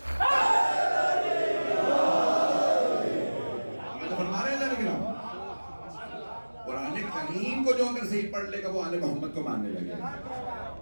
کو جو اگر صحیح پڑھ لے گا وہ آل محمد کو ماننے لگے گا.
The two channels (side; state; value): both; inverted; correlation -1.00